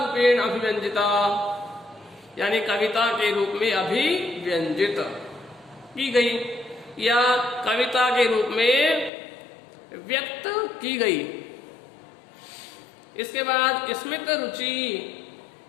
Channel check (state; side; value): drops out; right; at 9.1 s